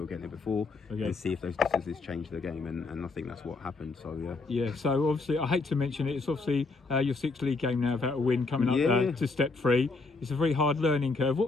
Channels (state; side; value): quieter; right; 3.8 dB